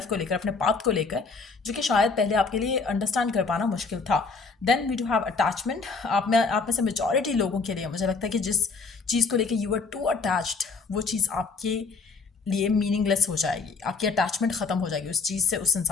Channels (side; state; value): right; quieter; 4.6 dB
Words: को लेकर, अपने पाथ को लेकर, जो कि शायद पहले आपके लिए अंडरस्टैंड कर पाना मुश्किल था। Then we do have attachment. आप में से मेजॉरिटी लोगों के लिए मुझे लगता है कि जिस चीज़ को लेकर यू आर टू अटैच्ड, वो चीज़ आपके लिए मीनिंगलेस हो जाएगी, आपकी अटैचमेंट ख़त्म हो जाएगी उस चीज़ से, उस